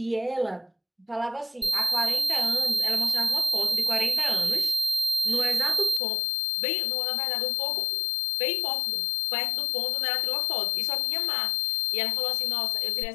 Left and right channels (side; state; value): right; drops out; at 6.0 s